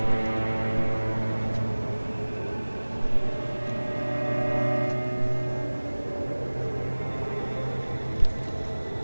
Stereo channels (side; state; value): both; inverted; correlation -1.00